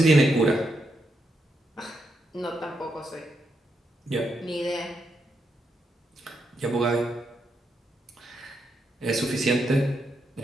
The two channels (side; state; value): both; normal; correlation 0.81